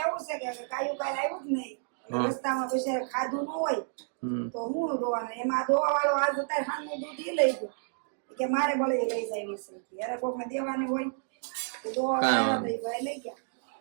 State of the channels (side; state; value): left; silent; digital silence